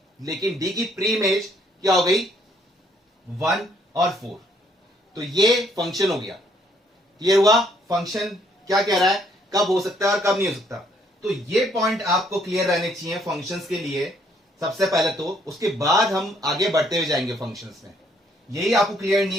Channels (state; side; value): normal; both; correlation 0.67